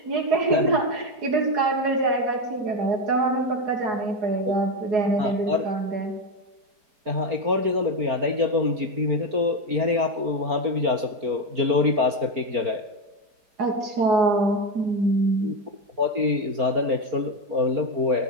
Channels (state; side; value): late; left; 4.4 ms